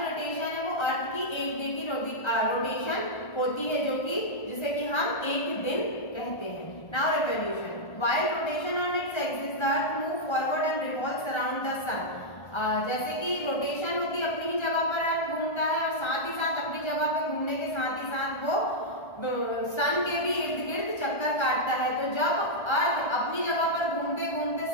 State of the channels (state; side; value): late; right; 1.3 ms